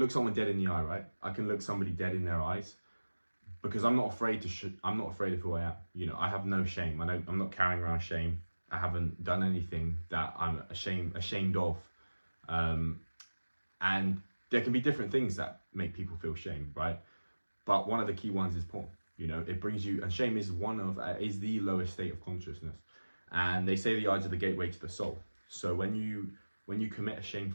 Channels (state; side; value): inverted; both; correlation -1.00